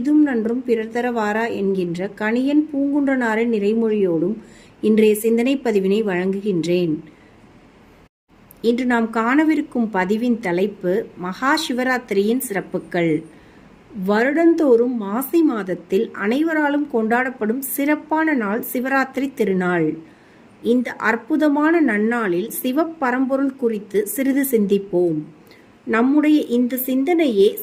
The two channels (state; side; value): identical; both; correlation 1.00